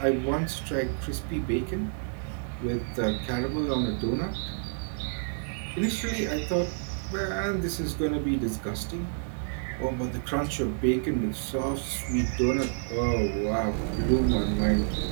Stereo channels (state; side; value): silent; left; digital silence